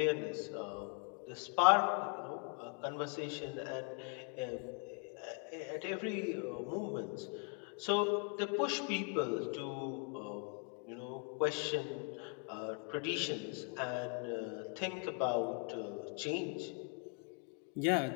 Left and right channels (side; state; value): right; quieter; 38.0 dB